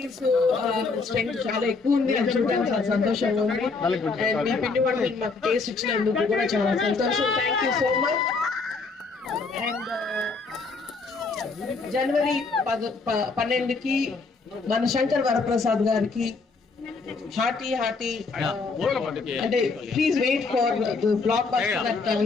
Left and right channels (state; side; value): quieter; right; 4.3 dB